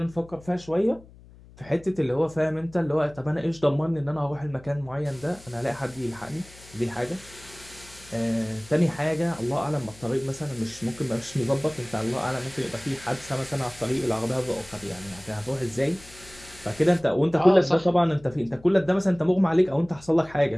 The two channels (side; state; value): left; noise; hum, 22 dB below the sound